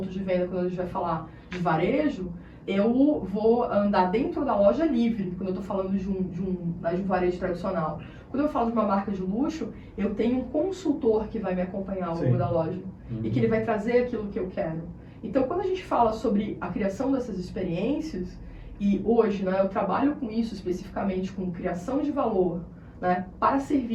de venda, quando a gente vai falar de varejo, eu vou andar dentro da loja livre, quando eu estou falando de um varejo tradicional. Quando eu falo de uma marca de luxo, eu tenho um consultor que vai me acompanhar ao longo da loja e que ele vai trazer aquilo que eu quero. Então, quando a gente fala sobre a criação dessas experiências, e hoje, né, eu trabalho com isso especificamente, com criação de valor, né, para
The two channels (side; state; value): both; identical; correlation 1.00